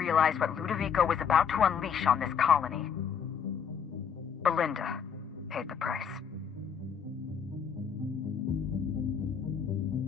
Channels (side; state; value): right; quieter; 7.1 dB